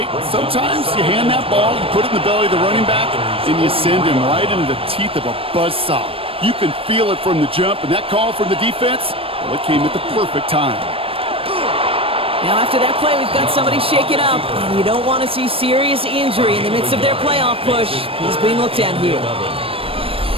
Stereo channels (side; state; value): left; late; 0.27 ms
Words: sometimes you hand that ball, you put it in the belly of the running back, and you send him right into the teeth of a buzzsaw. You can feel it from the jump, and that call from the defense, well, it came at the perfect time. Now after that play, we've got somebody shaken up, and you don't want to see serious injury in the midst of their playoff push. He's being looked at here.